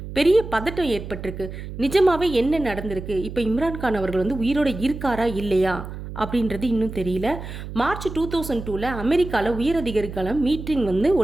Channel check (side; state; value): right; noise; hum, 10 dB below the sound